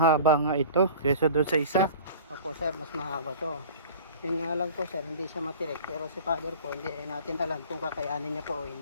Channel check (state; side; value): inverted; both; correlation -0.42